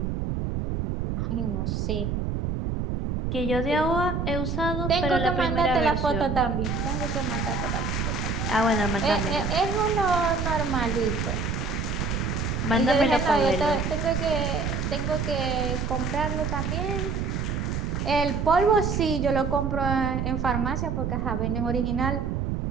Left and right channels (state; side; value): noise; right; rumble, 1 dB below the sound